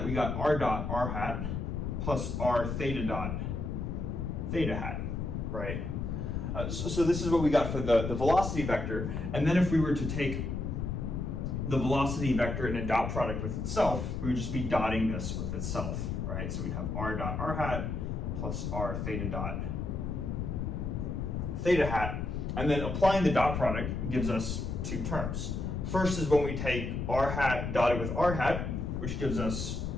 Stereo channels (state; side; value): noise; left; rumble, 3 dB below the sound